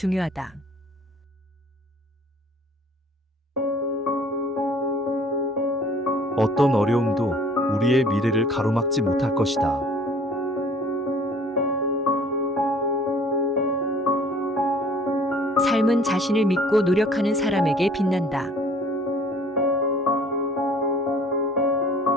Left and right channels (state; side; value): normal; both; correlation 0.53